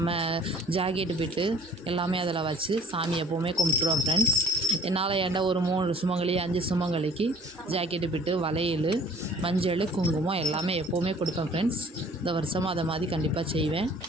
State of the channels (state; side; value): normal; both; correlation 0.52